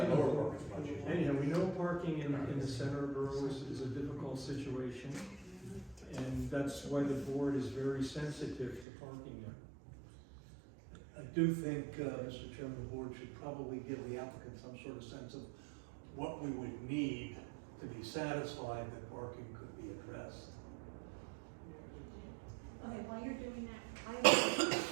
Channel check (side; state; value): left; drops out; at 8.8 s